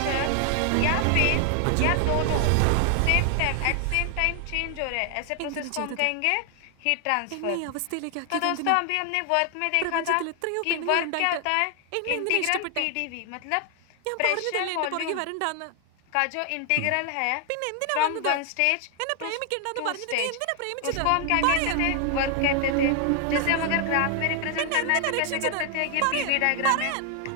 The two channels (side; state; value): both; different; correlation 0.00